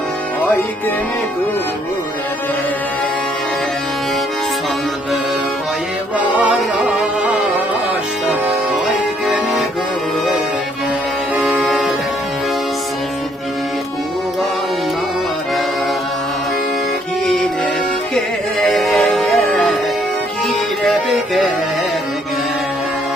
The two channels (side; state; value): both; normal; correlation 0.67